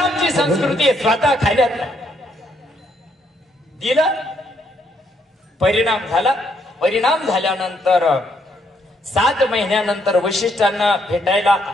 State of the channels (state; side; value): normal; both; correlation 0.73